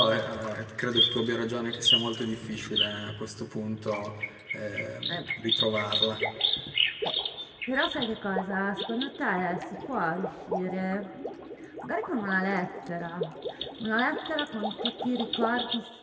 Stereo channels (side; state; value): both; identical; correlation 1.00